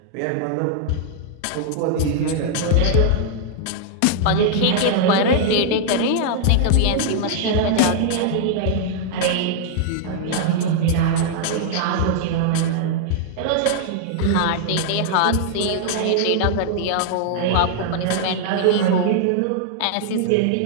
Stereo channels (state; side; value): different; both; correlation -0.01